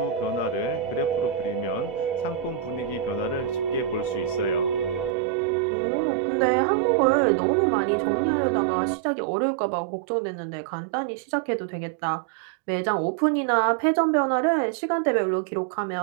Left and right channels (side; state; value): left; drops out; at 5.2 s